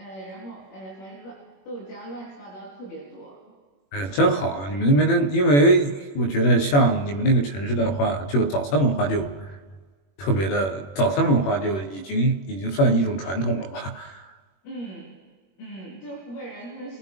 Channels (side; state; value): right; late; 21 ms